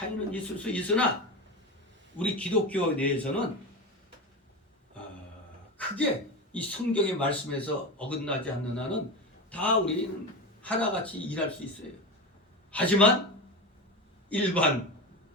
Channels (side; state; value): both; normal; correlation 0.23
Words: 있을 수 있으나 우리 기독교 내에서는 크게 이 성경의 말씀에서 어긋나지 않는 한은 다 우리는 하나같이 일할 수 있어요. 하지만 일반